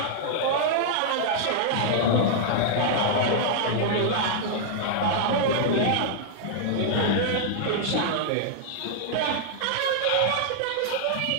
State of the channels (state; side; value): different; both; correlation -0.01